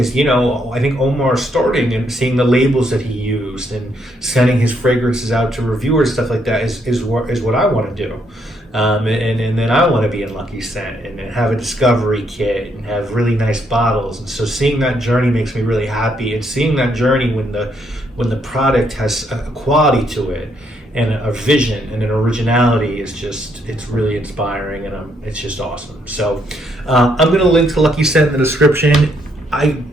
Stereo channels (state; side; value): normal; both; correlation 0.73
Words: you know, I think Omar starting and seeing the labels that he used and sending his fragrances out to reviewers, stuff like that, is what I want to do. And then I want to be in Lucky Scent and have a discovery kit and have really nice bottles. And so seeing that journey makes me really happy. And seeing that journey when the product has a quality to it and a vision and an originality is just, it's really inspiring, and it's just awesome. So I'm going to link to Lucky Scent in the description. I